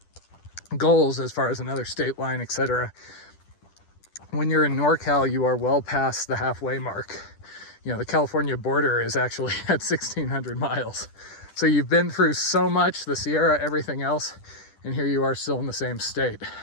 goals as far as another state line, etc. When you're in NorCal, you are well past the halfway mark. The California border is actually at 1,600 miles. So you've been through so much, the Sierra, everything else, and here you are still in the same state.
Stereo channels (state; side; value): late; right; 10 ms